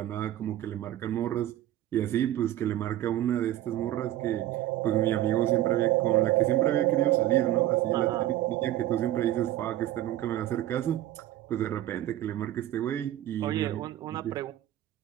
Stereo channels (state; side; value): quieter; left; 13.6 dB